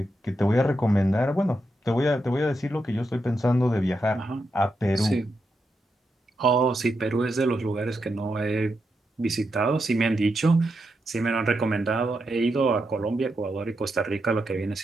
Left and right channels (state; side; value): normal; both; correlation 0.85